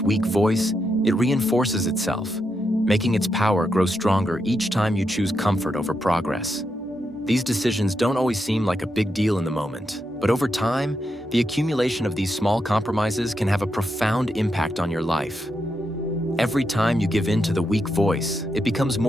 weak voice, it reinforces itself, making its power grow stronger each time you choose comfort over progress. These decisions don't always seem like a big deal in the moment, but over time, the accumulation of these small compromises can have a profound impact on your life. Every time you give in to the weak voice, it becomes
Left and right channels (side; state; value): both; normal; correlation 0.84